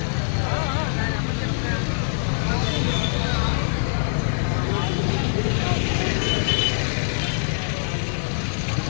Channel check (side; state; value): right; silent; digital silence